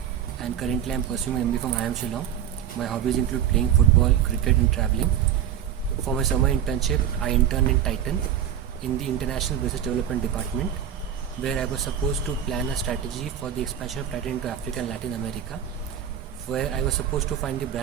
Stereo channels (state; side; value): quieter; left; 9.7 dB